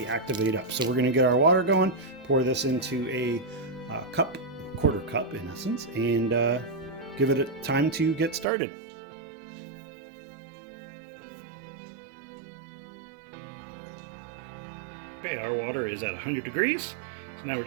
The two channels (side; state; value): left; drops out; at 8.5 s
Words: activate up. So we're going to get our water going, pour this into a quarter cup in essence, and give it a time to get started. Okay, our water is at 100 degrees, so now we're